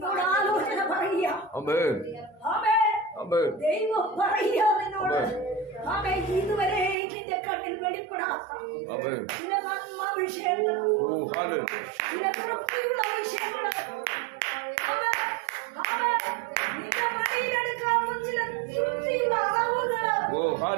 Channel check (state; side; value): drops out; left; at 7.0 s